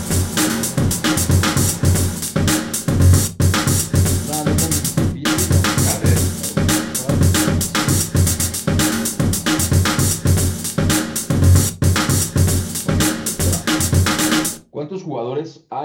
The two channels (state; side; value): identical; both; correlation 1.00